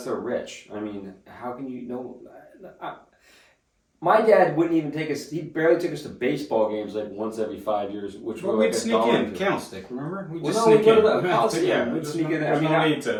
they're rich. I mean, how can you know? My dad wouldn't even take us. He barely took us to baseball games like once every 5 years, which were like we'd sneak in, candlestick. Remember? We'd sneak in. We'd sneak in. There's no need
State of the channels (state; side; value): identical; both; correlation 1.00